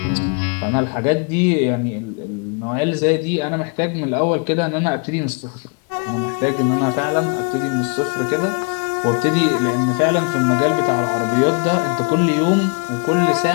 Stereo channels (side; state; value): right; quieter; 35.4 dB